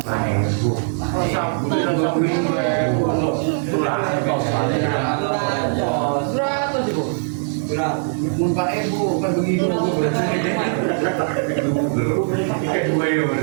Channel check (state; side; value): silent; left; digital silence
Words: main bu. Mumpah ibu kan begitu bu.